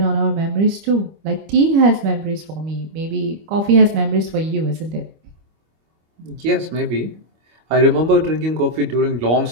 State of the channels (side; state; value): left; late; 25 ms